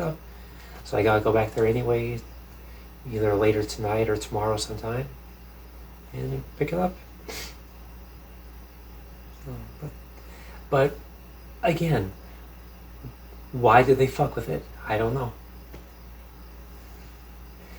So I gotta go back there anyway, either later tonight or tomorrow sometime, and pick it up. But again, why did they fuck with it? I don't know.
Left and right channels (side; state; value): both; identical; correlation 1.00